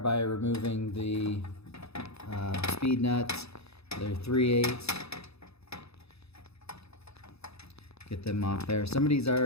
by removing the speed nuts. They're 3/8. Get them off there. Somebody's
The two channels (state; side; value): late; right; 0.79 ms